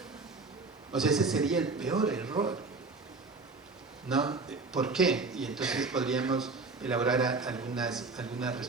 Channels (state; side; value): quieter; left; 3.9 dB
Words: O sea, ese sería el peor error, ¿no? ¿Por qué? Y entonces podríamos elaborar algunas